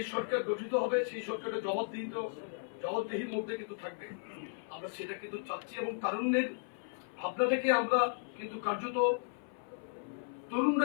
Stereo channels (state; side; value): silent; right; 54 dB below the other